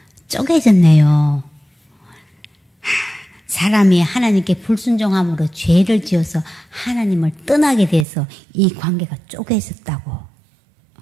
쪼개졌네요. 사람이 하나님께 불순종함으로 죄를 지어서 하나님을 떠나게 돼서 이 관계가 쪼개졌다고.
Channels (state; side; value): drops out; left; at 8.1 s